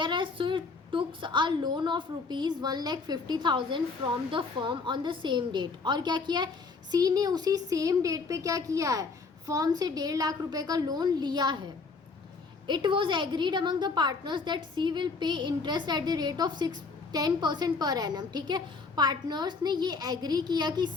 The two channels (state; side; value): quieter; right; 4.4 dB